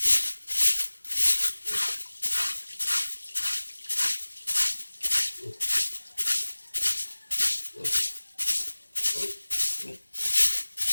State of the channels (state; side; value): inverted; both; correlation -1.00